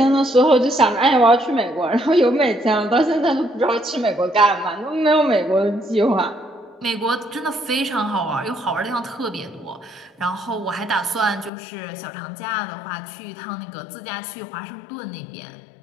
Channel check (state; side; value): drops out; right; at 11.5 s